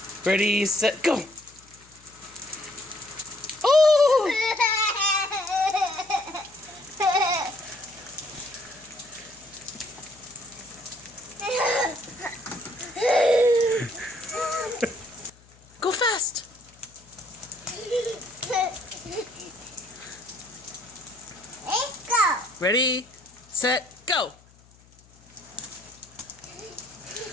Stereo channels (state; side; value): noise; left; hum, 27 dB below the sound